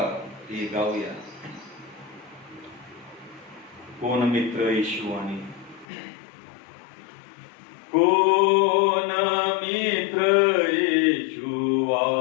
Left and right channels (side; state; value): right; drops out; at 5.9 s